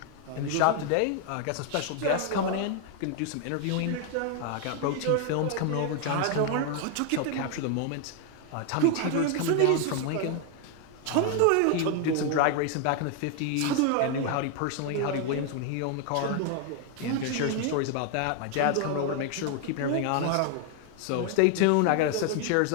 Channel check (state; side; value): different; both; correlation 0.00